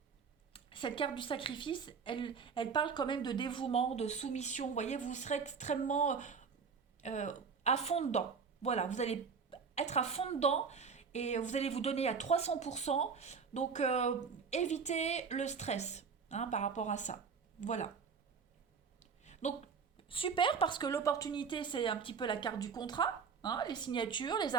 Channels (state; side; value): quieter; left; 5.8 dB